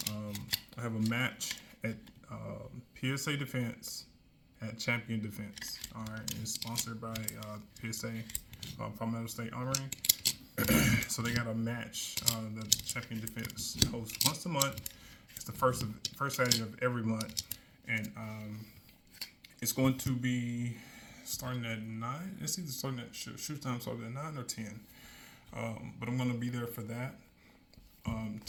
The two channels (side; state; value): both; identical; correlation 1.00